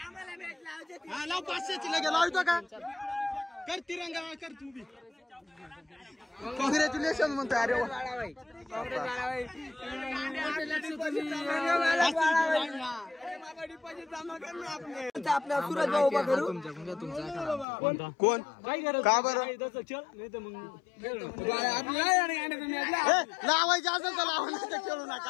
हा लाव 500ची लगे लावतो का. कर तिरंगा कर तू बी. कॉंग्रॅच्युलेशन म्हणतो. अरे आपल्या सुरज भाऊ उभा करू. कोण का बरं लावायचं असेल तर लावा नाही तर खेळू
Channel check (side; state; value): right; drops out; at 17.7 s